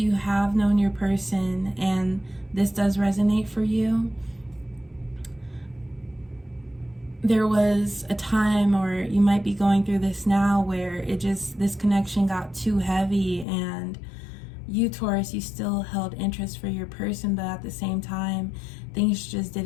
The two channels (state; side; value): drops out; right; at 13.5 s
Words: have known your person and this does resonate for you, there was a time, or you might be going through this now, where this connection got too heavy, and you, Taurus, you still held interest for your person, but at the same time things just